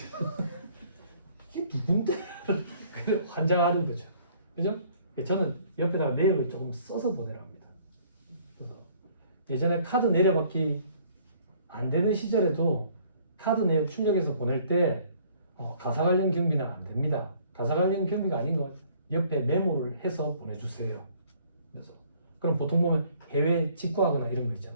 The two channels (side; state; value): both; inverted; correlation -0.59